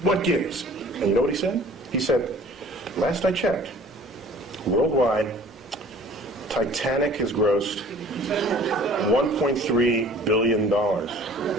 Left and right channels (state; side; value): normal; both; correlation 0.49